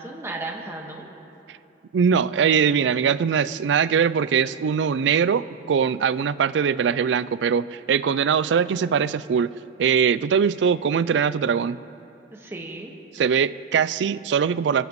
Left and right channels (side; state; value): left; quieter; 6.6 dB